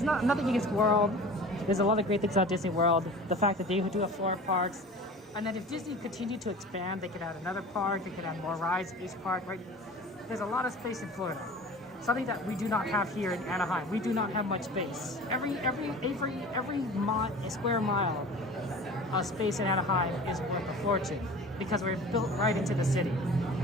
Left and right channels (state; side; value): normal; both; correlation 0.40